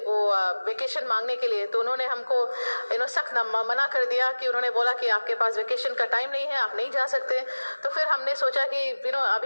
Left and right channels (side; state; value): both; inverted; correlation -1.00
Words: वेकेशन मांगने के लिए। तो उन्होंने हमको सख्त मना कर दिया कि उन्होंने बोला कि आपके पास वेकेशन का टाइम नहीं है, आप नहीं जा सकते। तो फिर हमने सोचा कि